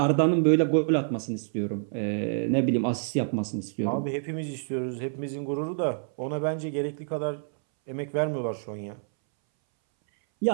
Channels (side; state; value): left; silent; 60 dB below the other